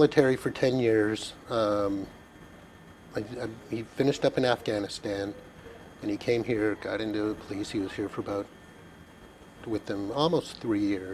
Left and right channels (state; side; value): identical; both; correlation 1.00